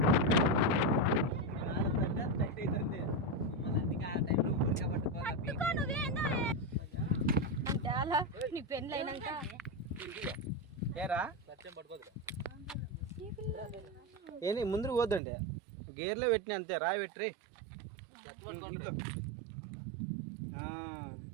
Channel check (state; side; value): drops out; left; at 15.2 s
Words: నీ పెళ్ళి అయినాక ఏంటి ముందుకు పోద్దండి గేర్లో పెట్టిన అంతే రాయి పెట్టి